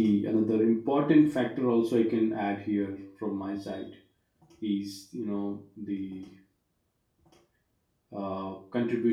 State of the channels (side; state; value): both; identical; correlation 1.00